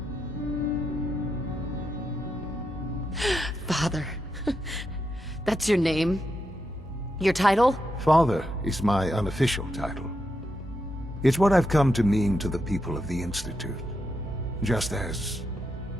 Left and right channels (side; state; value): both; normal; correlation 0.84